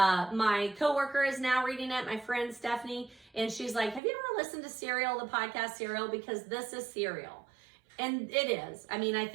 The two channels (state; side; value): drops out; left; at 4.0 s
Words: coworker is now reading it, my friend Stephanie, and she's like, have you ever listened to Serial, the podcast Serial? Because this is Serial. And it is. I mean, I